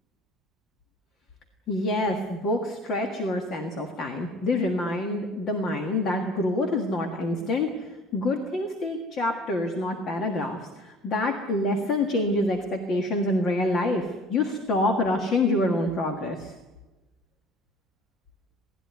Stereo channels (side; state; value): both; normal; correlation 0.48